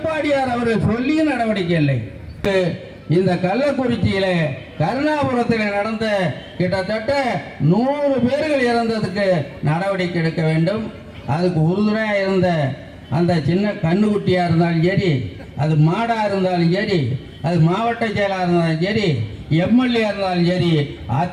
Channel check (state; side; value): identical; both; correlation 1.00